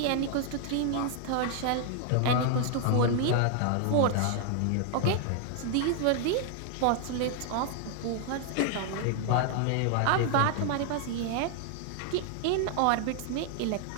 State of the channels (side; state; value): both; different; correlation 0.00